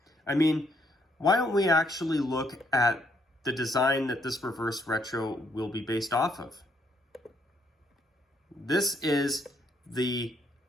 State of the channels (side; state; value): both; normal; correlation 0.71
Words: I mean, why don't we actually look at the design that this reverse retro will be based off of? This is the